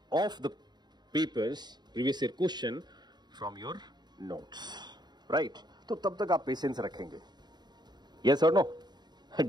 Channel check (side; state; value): left; late; 0.20 ms